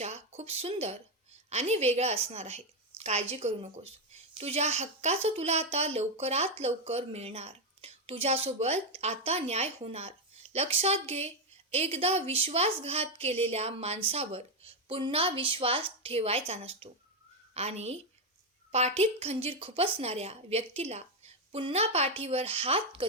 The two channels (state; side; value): normal; both; correlation 0.05